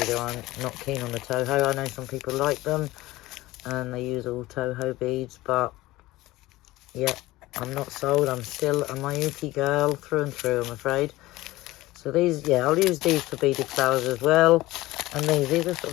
I'm not keen on the Toho. I know some people like them, and they use all Toho beads, but yeah, I'm not sold. I'm still a Mayuki girl through and through, I'm afraid. So these, yeah, I'll use these for beaded flowers as well. And these are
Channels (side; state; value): right; quieter; 18.3 dB